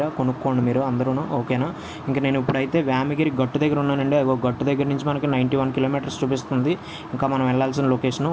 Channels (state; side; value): identical; both; correlation 1.00